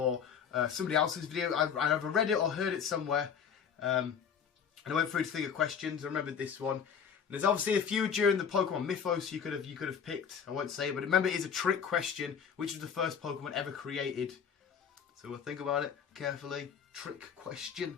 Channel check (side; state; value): right; quieter; 7.2 dB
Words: somebody else's video. I either read it or heard it somewhere. And I went through to think of questions. I remembered this one. And there's obviously a few during the Pokemon Mythos you could have picked. I won't say it, but remember, it is a trick question. Which was the first Pokemon ever created? So we'll think about it carefully. Trick question.